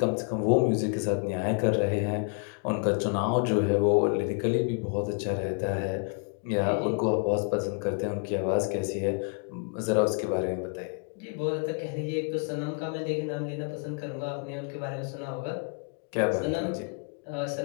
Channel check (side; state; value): right; quieter; 38.9 dB